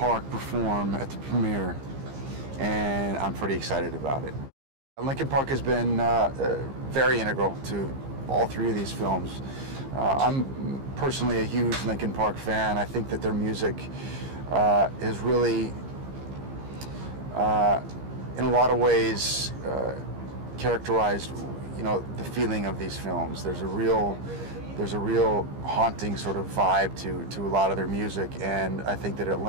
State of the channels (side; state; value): left; late; 15 ms